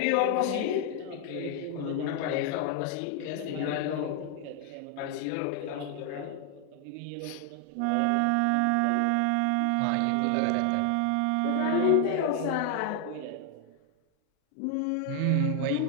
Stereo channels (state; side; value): different; both; correlation 0.00